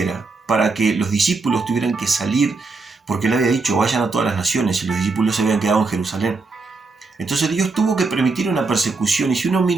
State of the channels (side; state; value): left; quieter; 3.9 dB